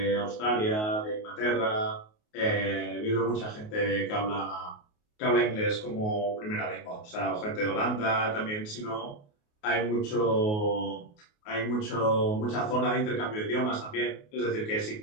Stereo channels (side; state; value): right; late; 28 ms